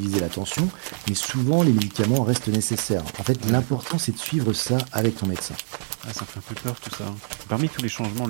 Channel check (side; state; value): left; silent; digital silence